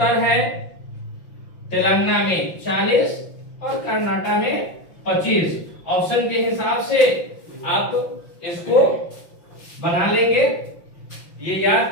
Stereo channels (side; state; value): right; late; 5.8 ms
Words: है, तेलंगाना में 40 और कर्नाटक में 25। ऑप्शन के हिसाब से आप इसको बना लेंगे, ये याद